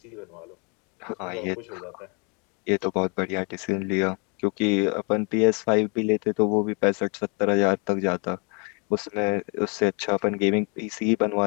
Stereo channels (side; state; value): right; quieter; 33.7 dB